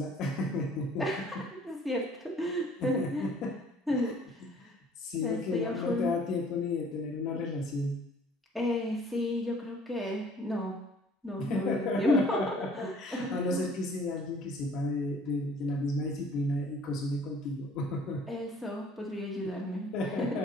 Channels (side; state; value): both; normal; correlation 0.55